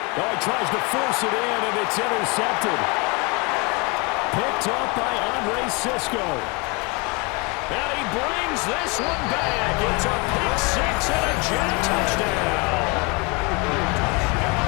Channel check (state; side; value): quieter; right; 29.5 dB